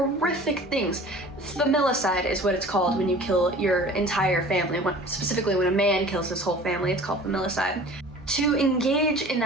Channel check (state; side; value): normal; both; correlation 0.44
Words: things. Familicide is what it's called when you kill your entire family. Specifically when a man kills his whole family, it's called familicide. To engage in